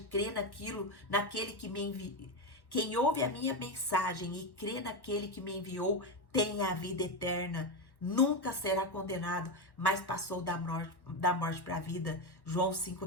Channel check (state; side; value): late; right; 1.1 ms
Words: e crê naquele que me enviou. Quem ouve a minha mensagem e crê naquele que me enviou tem a vida eterna. Nunca será condenado, mas passou da morte para a vida. João